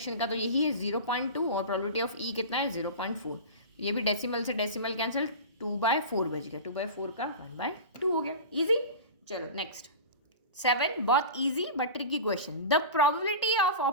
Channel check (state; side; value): inverted; both; correlation -0.31